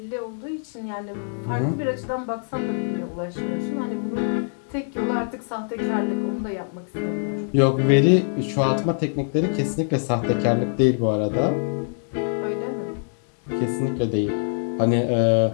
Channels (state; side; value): silent; right; 63 dB below the other